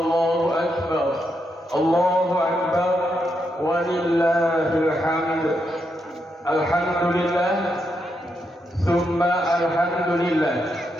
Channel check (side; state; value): both; normal; correlation 0.82